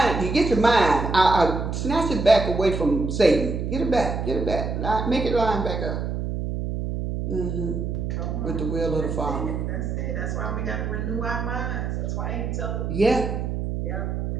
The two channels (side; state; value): right; noise; hum, 3 dB below the sound